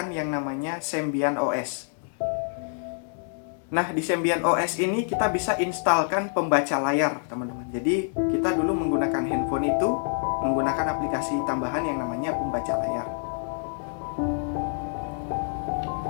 yang namanya Symbian OS. Nah, di Symbian OS ini kita bisa instalkan pembaca layar, teman-teman. Jadi kita dulu menggunakan handphone itu menggunakan aplikasi tambahan yang namanya pembaca layar.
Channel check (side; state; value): right; silent; digital silence